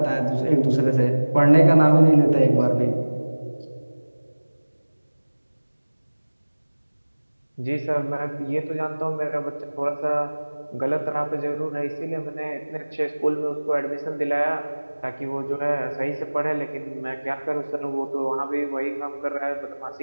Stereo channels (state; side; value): inverted; both; correlation -1.00